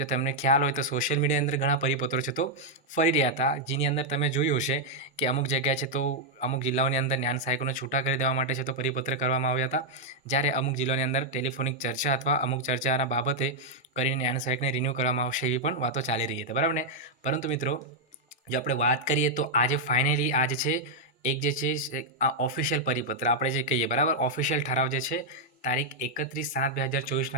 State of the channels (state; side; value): normal; both; correlation -0.03